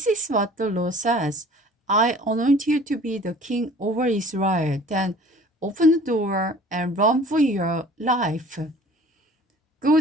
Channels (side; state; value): both; normal; correlation 0.49